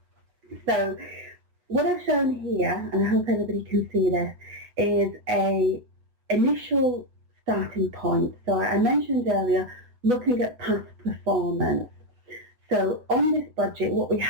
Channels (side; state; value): left; late; 7.9 ms